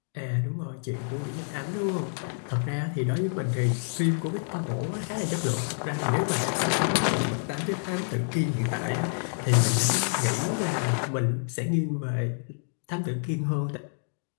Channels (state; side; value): silent; right; digital silence